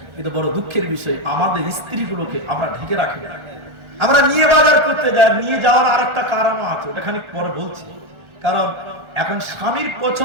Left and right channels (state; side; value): late; left; 1.4 ms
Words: কিন্তু বড় দুঃখের বিষয় আমাদের স্ত্রীগুলোকে আমরা ঢেকে রাখি। আমরা নিয়ে বাজার করতে যাই, নিয়ে যাওয়ার আরেকটা কারণ আছে, ওটা খানিক পরে বলছি। কারণ এখন স্বামীর